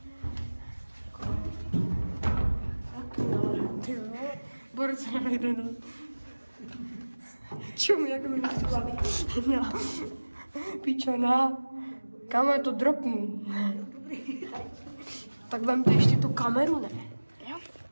Ty jo. Borce nejde do... Čum, jak mi nechci. No. Pičona. Kam je to dropnu? Tak vemte ještě tu kameru, ne? Jo.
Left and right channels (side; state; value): both; inverted; correlation -1.00